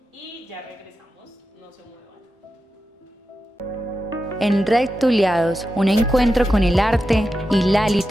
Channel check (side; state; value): both; normal; correlation 0.90